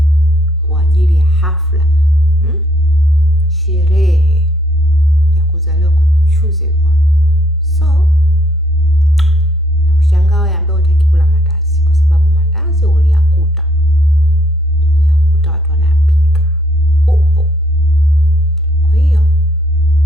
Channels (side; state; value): both; normal; correlation 0.68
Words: kwa ajili ya hafla, sherehe ya kuzaliwa kwa chosen one. So nakushangaa wewe ambaye hutaki kula mandazi, kwa sababu mandazi uliyakuta watu wanayapika upo. Kwa hiyo